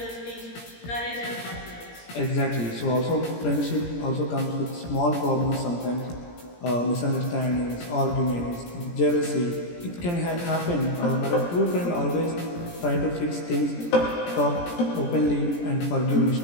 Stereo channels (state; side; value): late; right; 17 ms